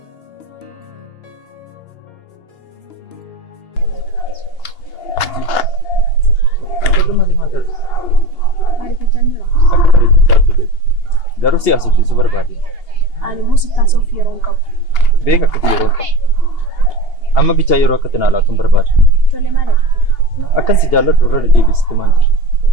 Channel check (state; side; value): late; right; 2.8 ms